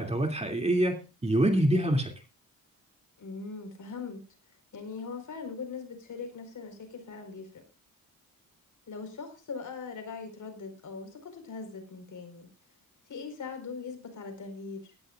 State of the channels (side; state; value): both; normal; correlation 0.69